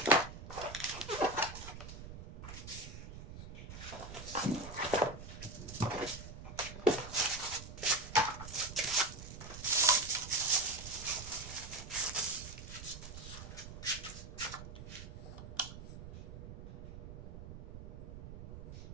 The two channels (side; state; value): right; noise; rumble, 11 dB below the sound